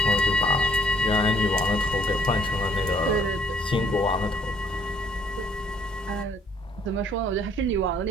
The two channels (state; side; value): normal; both; correlation 0.64